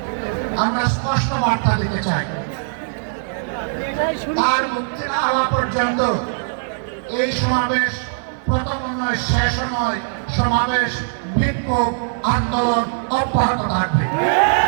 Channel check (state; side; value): silent; left; digital silence